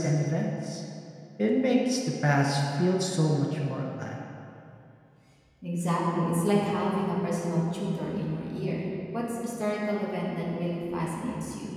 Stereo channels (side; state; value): both; identical; correlation 1.00